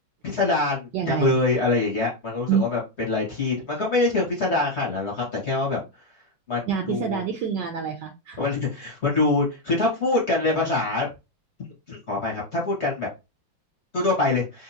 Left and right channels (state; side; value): normal; both; correlation 0.05